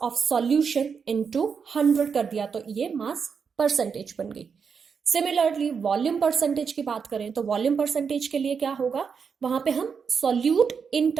of solution into 100 कर दिया तो ये मास परसेंटेज बन गई। सिमिलरली वॉल्यूम परसेंटेज की बात करें तो वॉल्यूम परसेंटेज के लिए क्या होगा, वहां पे हम solute in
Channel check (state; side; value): quieter; left; 6.1 dB